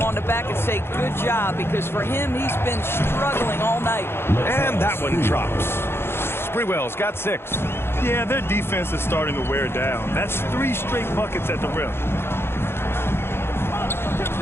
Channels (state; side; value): late; right; 0.11 ms